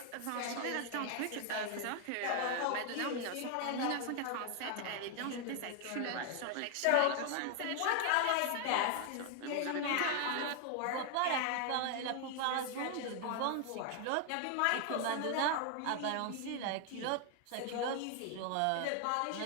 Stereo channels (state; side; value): different; both; correlation 0.00